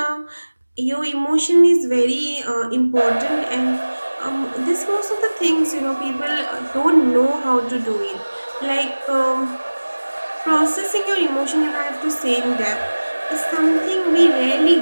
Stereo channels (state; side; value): inverted; both; correlation -1.00